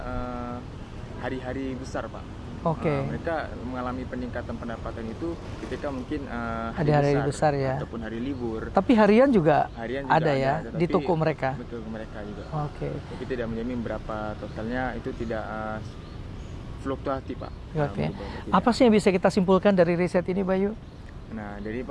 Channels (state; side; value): identical; both; correlation 1.00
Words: hari-hari besar Pak. Mereka mengalami peningkatan pendapatan itu ketika mungkin hari besar ya, ataupun hari libur. Tapi harian juga ada ya di toko mereka. Betul, mereka juga. Tapi tidak menjamin berapa totalnya, itu tidak fluktuatif Pak. Apa sih yang bisa kita simpulkan dari riset ini Bayu? Nah, jadi